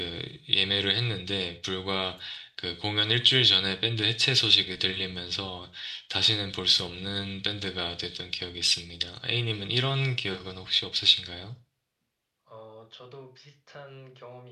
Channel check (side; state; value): both; identical; correlation 1.00